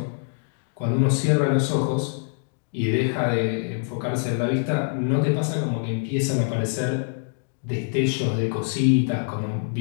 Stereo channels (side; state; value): right; silent; digital silence